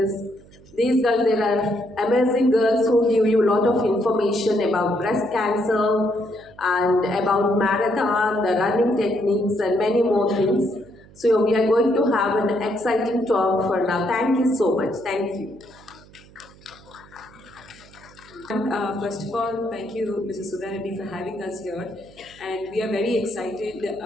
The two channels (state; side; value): noise; right; hum, 24 dB below the sound